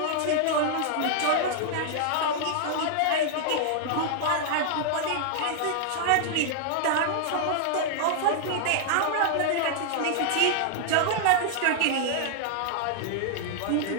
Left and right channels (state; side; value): different; both; correlation -0.01